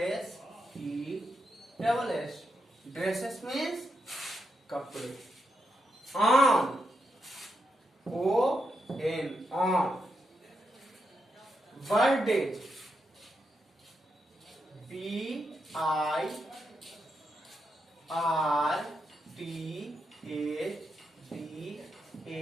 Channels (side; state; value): both; normal; correlation 0.84